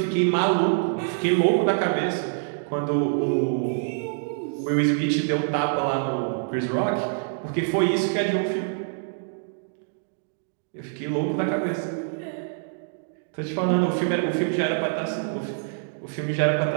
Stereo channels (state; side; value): silent; left; digital silence